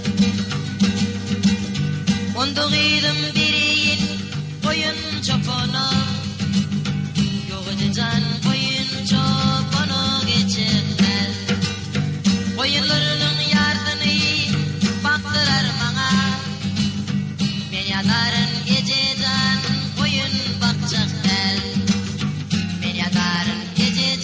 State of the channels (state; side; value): identical; both; correlation 1.00